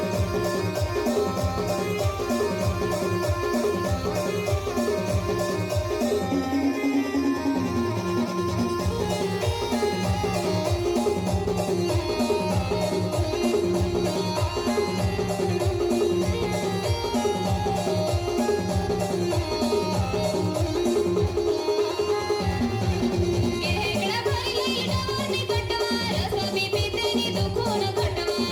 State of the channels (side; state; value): both; identical; correlation 1.00